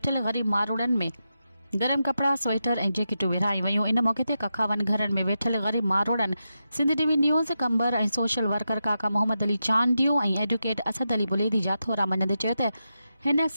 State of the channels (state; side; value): inverted; both; correlation -0.88